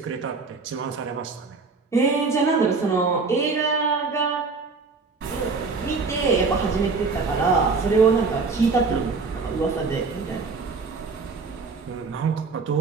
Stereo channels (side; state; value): left; quieter; 4.4 dB